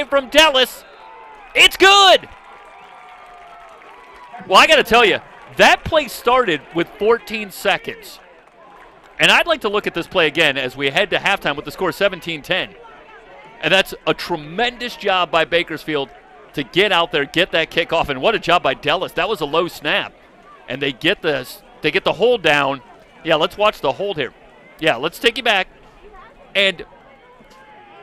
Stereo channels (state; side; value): identical; both; correlation 1.00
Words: from Dellis. It's good. Well, I got to tell you, that play started with 14 seconds. And I'd like to look at this play again as we head to halftime with the score 17-10. And that's a tremendous job by Bakersfield to get out there, get that kickoff, and what a job by Dellis. That was a low snap. And they get the hold down. Yeah, let's watch the hold here. Yeah, let's take you back. And